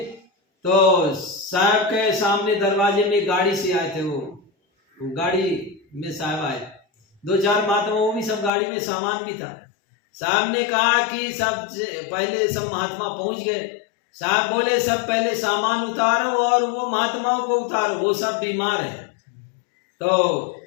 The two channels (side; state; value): right; drops out; at 8.5 s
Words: तो साहब के सामने दरवाजे में गाड़ी से आए थे, वो गाड़ी में साहब आए, 2-4 महात्मा, वो भी सब गाड़ी में सामान भी था। साहब ने कहा कि सब पहले सब महात्मा पहुंच गए। साहब बोले सब पहले सामान उतारो और वो महात्माओं को उतारो, वो सब बीमार है। तो